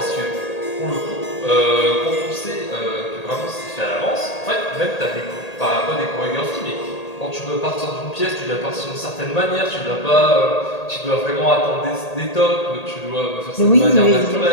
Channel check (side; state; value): right; late; 1.8 ms